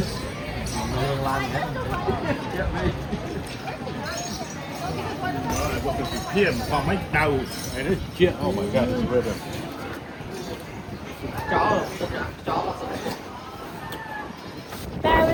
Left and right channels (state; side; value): identical; both; correlation 1.00